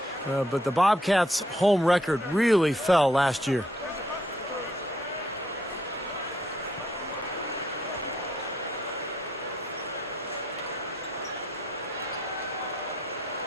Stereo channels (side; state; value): both; normal; correlation 0.71